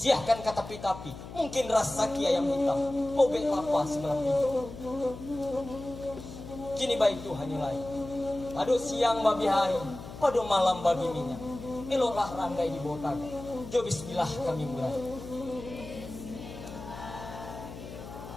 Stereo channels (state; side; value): noise; left; hum, 12 dB below the sound